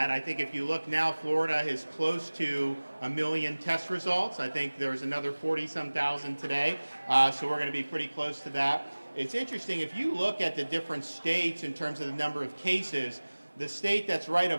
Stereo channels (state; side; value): inverted; both; correlation -1.00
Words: I think if you look now, Florida is close to 1 million test results. I think there's another 40-some thousand today, so we're going to be pretty close to that. It's interesting, if you look at the different states in terms of the number of cases, the state that's right